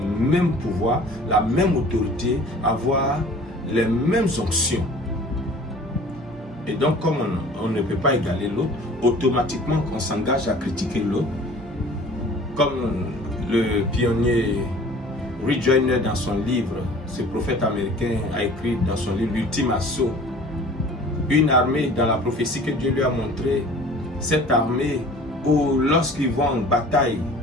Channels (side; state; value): both; normal; correlation 0.47